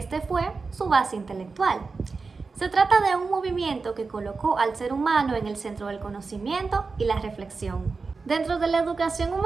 fue su base intelectual. Se trata de un movimiento que colocó al ser humano en el centro del conocimiento y la reflexión. Dentro de la educación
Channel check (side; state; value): left; quieter; 4.4 dB